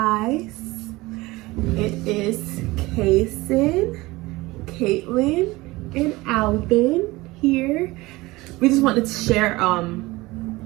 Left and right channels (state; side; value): quieter; left; 20.7 dB